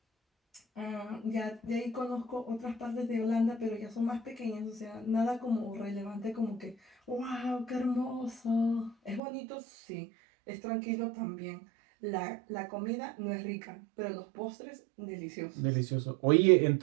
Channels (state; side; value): drops out; left; at 9.2 s